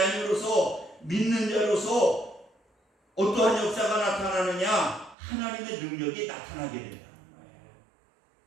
믿는 자로서 어떠한 역사가 나타나느냐? 하나님의 능력이 나타나게 된다는 거예요.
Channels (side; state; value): left; drops out; at 5.2 s